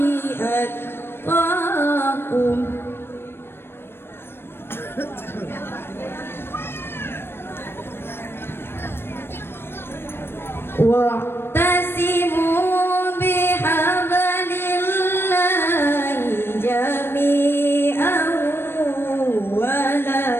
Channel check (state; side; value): late; right; 0.11 ms